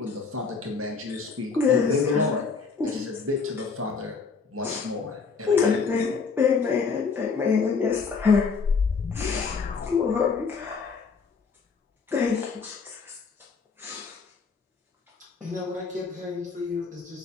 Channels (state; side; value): quieter; right; 5.1 dB